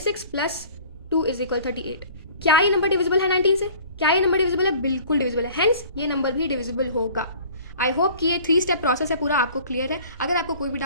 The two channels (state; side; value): inverted; both; correlation -0.48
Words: + 2 = 38। क्या ये नंबर डिविजिबल है 19 से, क्या ये नंबर डिविजिबल है, बिल्कुल डिविजिबल है, हेंस ये नंबर भी डिविजिबल होगा। आई होप कि ये 3 स्टेप प्रोसेस है पूरा आपको क्लियर है। अगर आपको कोई भी